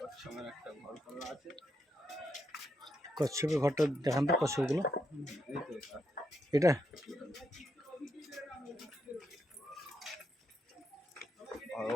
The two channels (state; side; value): normal; both; correlation 0.81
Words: একটা ঘর করা আছে। কচ্ছপের ঘরটা দেখান তো, কচ্ছপগুলো এই তো এটা আর